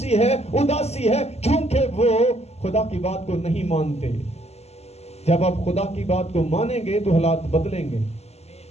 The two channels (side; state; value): right; late; 0.30 ms